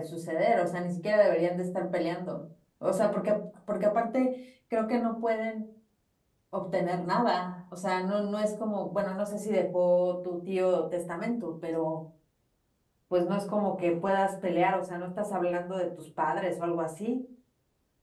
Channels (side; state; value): both; identical; correlation 1.00